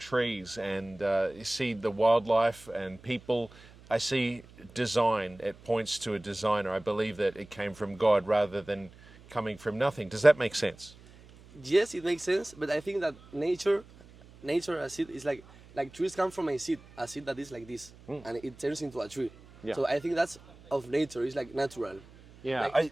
and you see the wildlife and people, I see design. It points to a designer. I believe that it came from God rather than coming from nothing. Does that make sense? Yes, it makes sense, but I think that nature as it is like trees come from a seed that is like this, and it turns into a tree. Yeah. So I think that's of nature. It's like natural. Yeah,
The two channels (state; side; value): noise; right; hum, 22 dB below the sound